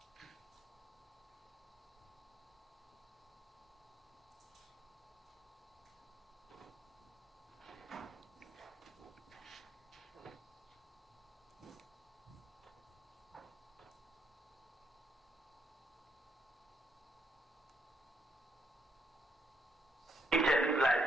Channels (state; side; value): normal; both; correlation 0.75